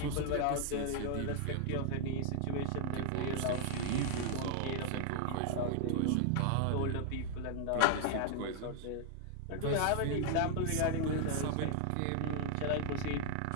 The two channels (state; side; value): different; both; correlation 0.00